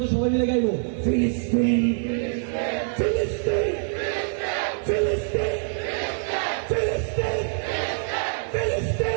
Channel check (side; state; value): left; silent; digital silence